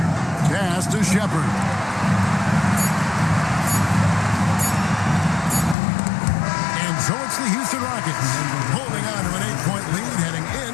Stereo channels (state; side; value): drops out; right; at 5.8 s